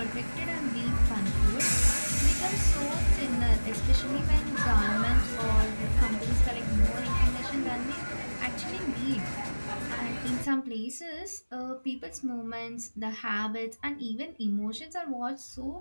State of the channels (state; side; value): inverted; both; correlation -1.00